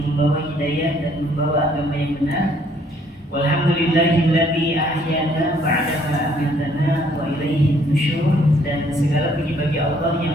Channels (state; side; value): normal; both; correlation 0.64